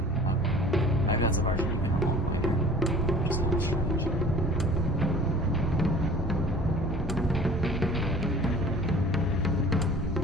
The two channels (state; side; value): normal; both; correlation 0.47